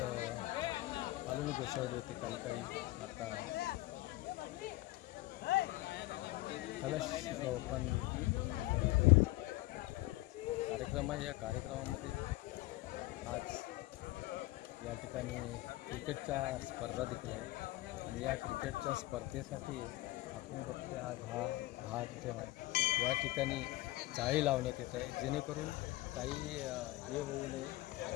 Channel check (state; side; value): quieter; right; 18.7 dB